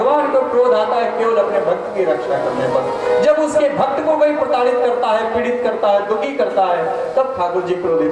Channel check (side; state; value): both; identical; correlation 1.00